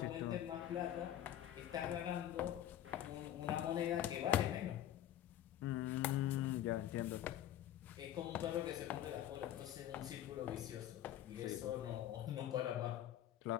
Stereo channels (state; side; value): quieter; right; 11.9 dB